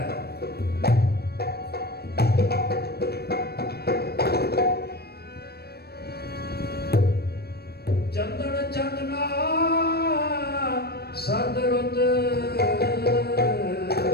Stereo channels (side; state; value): right; late; 0.47 ms